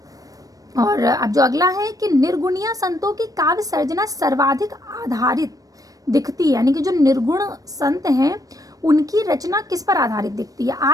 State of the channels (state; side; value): late; left; 0.17 ms